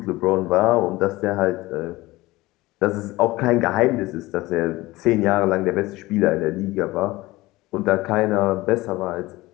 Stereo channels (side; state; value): right; quieter; 19.5 dB